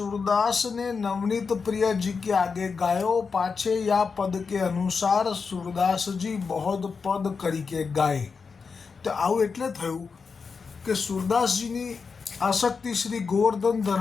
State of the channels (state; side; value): quieter; right; 5.2 dB